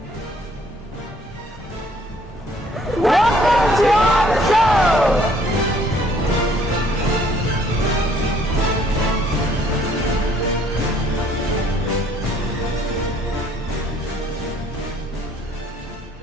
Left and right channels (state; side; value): normal; both; correlation 0.62